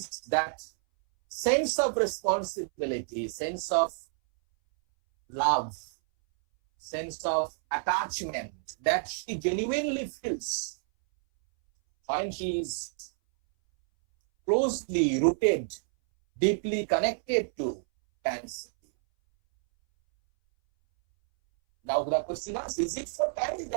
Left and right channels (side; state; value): left; silent; 58 dB below the other